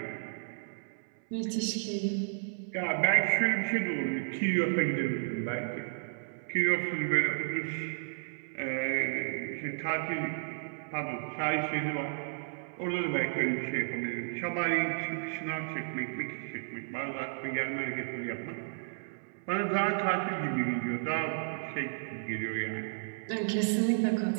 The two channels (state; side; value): silent; left; 56 dB below the other